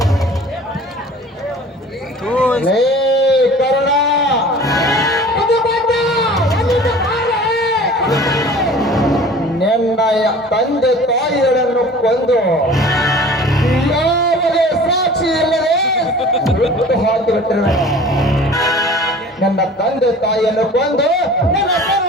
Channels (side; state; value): both; normal; correlation 0.44